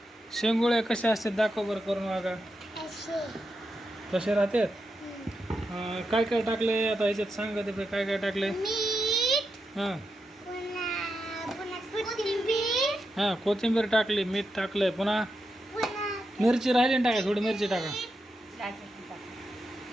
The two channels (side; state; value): both; normal; correlation 0.86